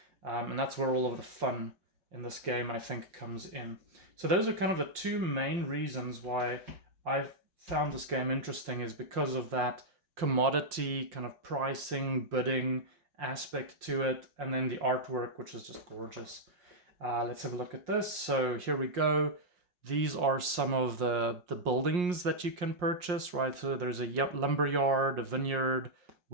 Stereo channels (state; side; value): late; left; 5.6 ms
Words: And that's where all of the fun in this game, I think, comes in. So those are kind of the 2 main reasons why I've found this game interesting, is because of that commodity kind of pricing, bidding aspect to it, and then the artwork, which is just gorgeous. Let's have a look at this. So here we go. These are some of the buildings that you can purchase, right? So there's a lumber yard, a vineyard,